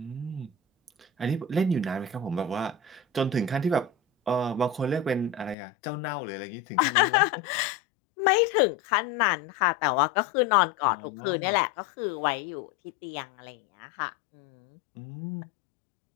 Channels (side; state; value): right; drops out; at 5.6 s